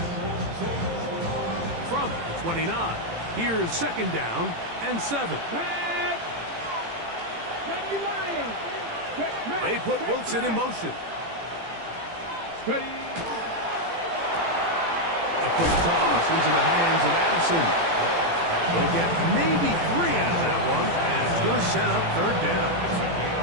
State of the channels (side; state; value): left; late; 18 ms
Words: From the 29, here's 2nd down and 7. They put Wilson in motion. Ready. A quick toss into the hands of Addison. They'll get maybe 3 out of that one, and it's going to set up 3rd down.